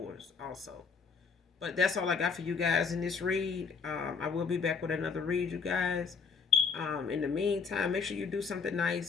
also. But that's all I got for you guys in this read. I will be back with another read, you guys. In the meantime, make sure you do something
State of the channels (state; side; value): quieter; right; 5.4 dB